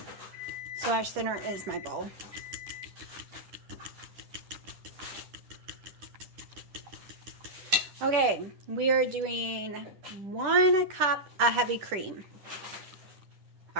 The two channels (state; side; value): late; left; 10 ms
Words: So our center is my bowl. Okay, we are doing 1 cup of heavy cream. I